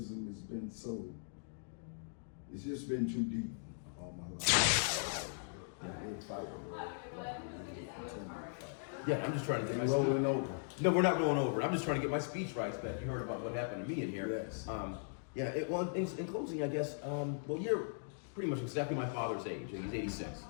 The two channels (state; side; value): silent; right; digital silence